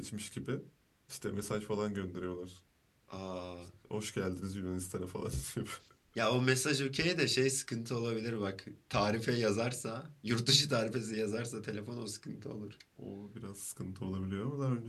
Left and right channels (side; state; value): both; identical; correlation 1.00